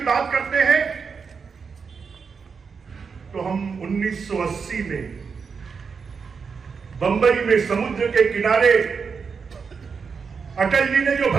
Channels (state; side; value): quieter; left; 5.6 dB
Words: बात करते हैं तो हम 1980 में बंबई में समुद्र के किनारे अटल जी ने जो